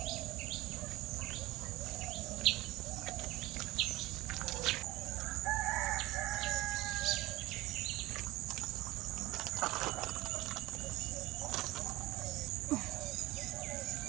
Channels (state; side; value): quieter; left; 18.5 dB